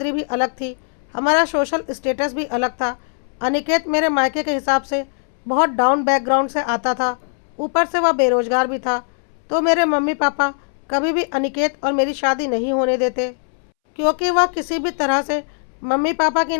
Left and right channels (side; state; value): right; silent; 66 dB below the other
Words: भी अलग थी, हमारा सोशल स्टेटस भी अलग था। अनिकेत मेरे मायके के हिसाब से बहुत डाउन बैकग्राउंड से आता था, ऊपर से वह बेरोजगार भी था। तो मेरे मम्मी पापा कभी भी अनिकेत और मेरी शादी नहीं होने देते, क्योंकि वह किसी भी तरह से मम्मी पापा की